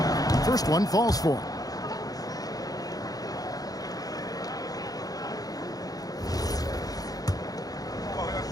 2. First one falls for him.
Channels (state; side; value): late; right; 0.18 ms